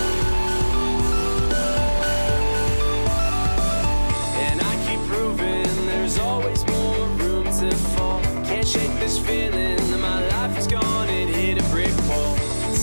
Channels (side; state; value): both; inverted; correlation -1.00